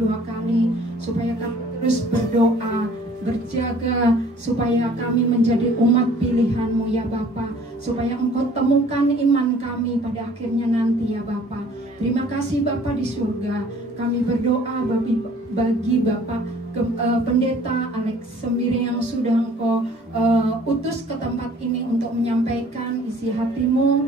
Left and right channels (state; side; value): normal; both; correlation 0.53